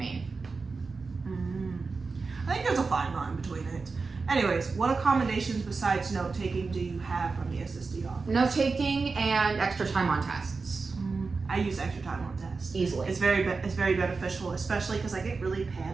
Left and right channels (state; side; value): quieter; left; 4.3 dB